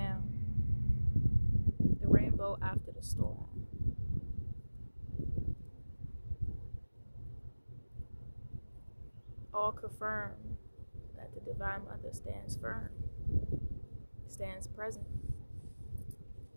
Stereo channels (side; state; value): both; inverted; correlation -1.00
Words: the rainbow after the storm. All confirm that the Divine Mother stands firm, stands present,